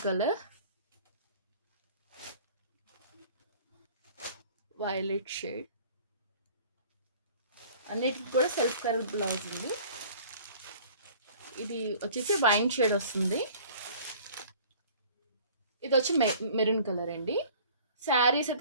colour, violet shade, అన్నిటికి కూడా సెల్ఫ్ కలర్ బ్లౌజ్ ఉంది. ఇది వచ్చేసి వైన్ షేడ్ వస్తుంది. ఇది వచ్చి మెరూన్ కలర్ అండి. శారీస్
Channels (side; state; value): both; inverted; correlation -0.49